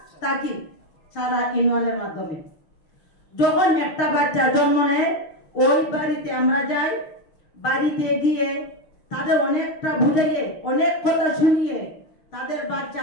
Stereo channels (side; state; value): right; late; 6.5 ms